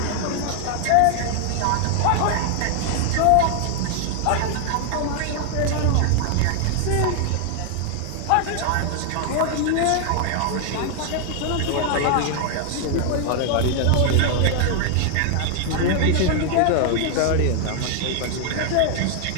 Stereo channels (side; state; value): both; different; correlation 0.00